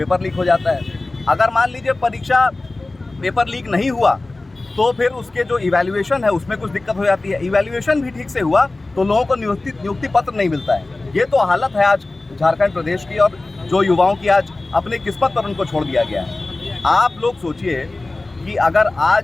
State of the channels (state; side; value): quieter; right; 3.1 dB